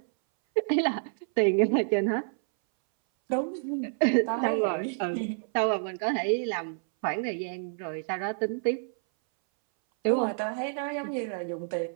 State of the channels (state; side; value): silent; left; 59 dB below the other